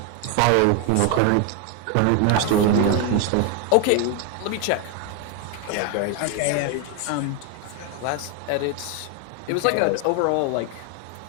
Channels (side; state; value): both; different; correlation 0.01